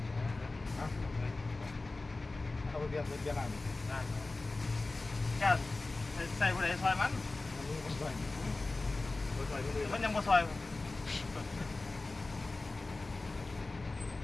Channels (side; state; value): right; quieter; 3.3 dB